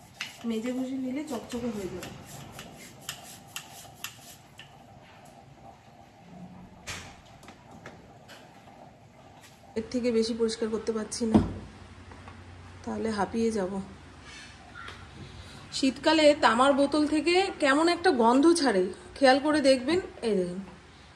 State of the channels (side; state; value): both; identical; correlation 1.00